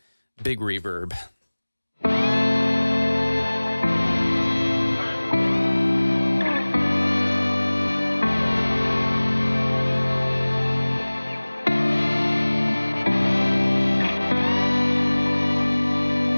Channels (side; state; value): both; inverted; correlation -1.00